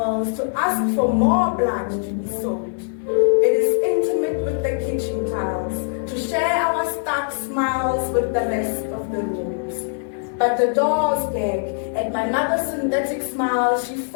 to ask for more blood to be sold. It is intimate with the kitchen tiles to share our stark smiles with the rest of the rooms. But the doors gag at my mother's synthetic smile she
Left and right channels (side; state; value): right; silent; 63 dB below the other